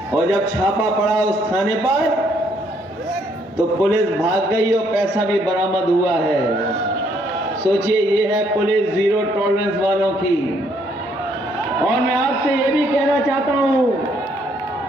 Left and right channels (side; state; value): both; normal; correlation 0.69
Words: और जब छापा पड़ा उस थाने पर तो पुलिस भाग गई और पैसा भी बरामद हुआ है। सोचिए, ये है पुलिस जीरो टॉलरेंस वालों की। और मैं आपसे ये भी कहना चाहता हूं,